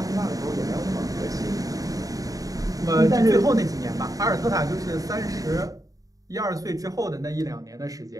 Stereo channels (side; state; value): left; late; 0.17 ms